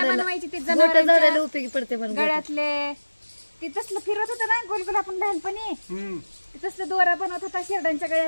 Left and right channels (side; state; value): both; inverted; correlation -1.00